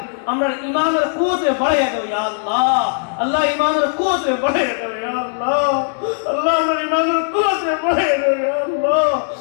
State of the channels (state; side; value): silent; right; 63 dB below the other